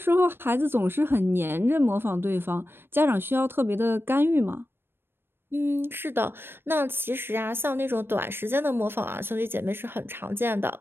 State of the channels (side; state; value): left; late; 0.10 ms